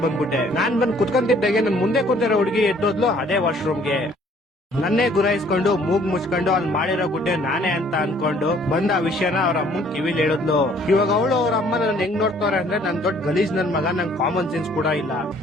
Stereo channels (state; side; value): normal; both; correlation 0.59